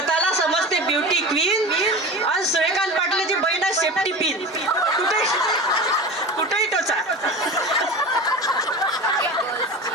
समजते ब्युटी क्वीन. आणि सूर्यकांत पाटलाची बहीण आहे सेफ्टी पिन. कुठेही टोचा.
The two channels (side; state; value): both; normal; correlation 0.31